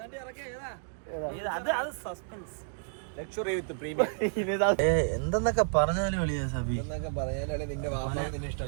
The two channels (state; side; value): silent; left; digital silence